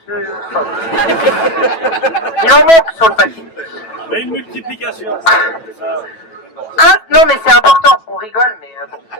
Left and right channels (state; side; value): late; right; 9.1 ms